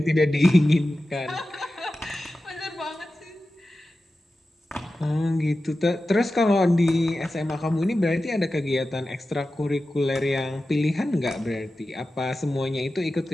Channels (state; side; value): normal; both; correlation 0.94